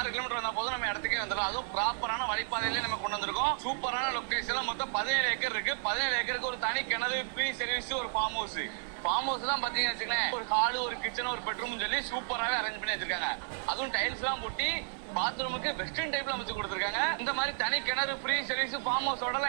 கிலோமீட்டர் வந்தா போதும் நம்ம இடத்துக்கே வந்துடும். அதுவும் ப்ராப்பரான வழிபாதையிலே நம்ம கொண்டு வந்திருக்கோம். சூப்பரான லொகேஷன். மொத்தம் 17 ஏக்கர் இருக்கு. 17 ஏக்கருக்கு ஒரு தனி கிணறு, ஃப்ரீ சர்வீஸ், ஒரு ஃபார்ம் ஹவுஸ். ஃபார்ம் ஹவுஸ் தான் பாத்தீங்கன்னு வச்சுக்கோங்களேன், ஒரு ஹாலு, ஒரு கிச்சன், ஒரு பெட்ரூம் சொல்லி சூப்பராகவே அரேஞ்ச் பண்ணி வச்சிருக்காங்க. அதுவும் டைல்ஸ் எல்லாம் போட்டி பாத்ரூமுக்கு வெஸ்டர்ன் டைப்ல அமைச்சு கொடுத்துருக்காங்க. இந்த மாதிரி தனி கிணறு, ஃப்ரீ சர்வீஸ், ஃபார்ம் ஹவுஸோட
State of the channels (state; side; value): silent; left; digital silence